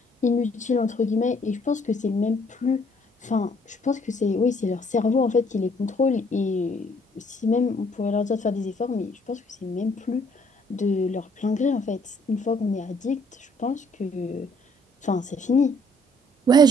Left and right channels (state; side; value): normal; both; correlation 0.63